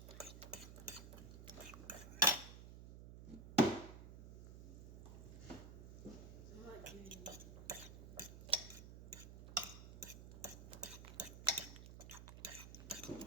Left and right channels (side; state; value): right; noise; hum, 12 dB below the sound